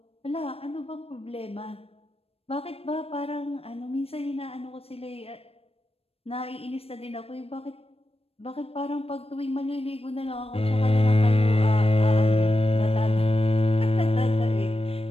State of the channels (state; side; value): late; right; 0.28 ms